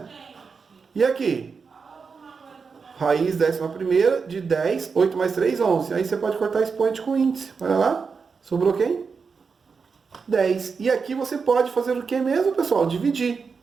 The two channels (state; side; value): quieter; left; 5.3 dB